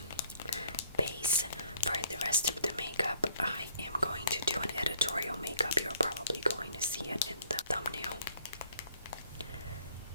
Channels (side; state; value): both; inverted; correlation -0.62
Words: base for the rest of the makeup. I am going to do an editorial makeup. You're probably going to see it in the thumbnail.